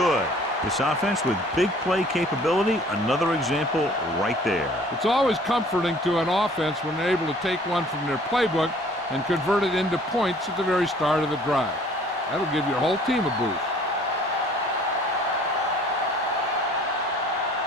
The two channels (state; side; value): normal; both; correlation 0.54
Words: This offense with big play capability, another example right there. It's always comforting to an offense when they're able to take one from their playbook and convert it into points at the very start of the drive. That'll give your whole team a boost.